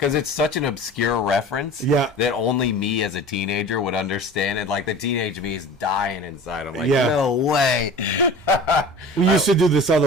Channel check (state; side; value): normal; both; correlation 0.39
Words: it's such an obscure reference that only me as a teenager would understand. And, like, the teenage me is dying inside. I'm like, no way. We used to do this